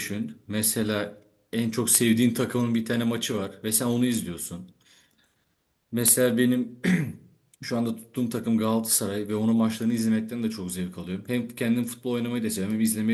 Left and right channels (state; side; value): identical; both; correlation 1.00